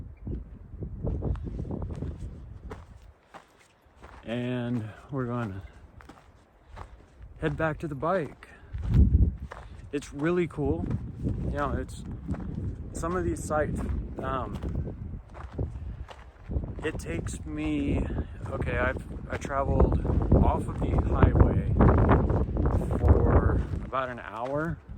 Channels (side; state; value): both; identical; correlation 1.00